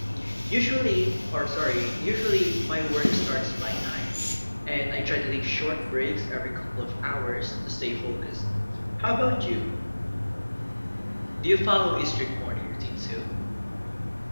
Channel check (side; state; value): both; inverted; correlation -1.00